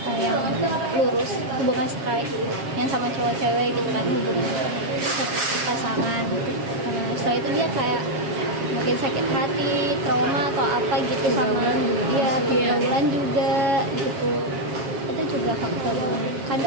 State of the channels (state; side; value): late; left; 7.4 ms